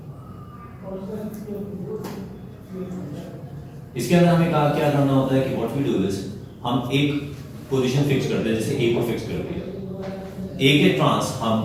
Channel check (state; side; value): identical; both; correlation 1.00